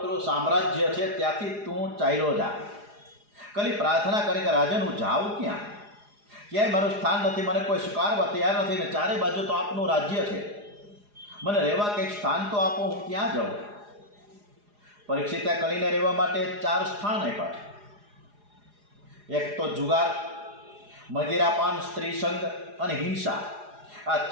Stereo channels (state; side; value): late; left; 4.9 ms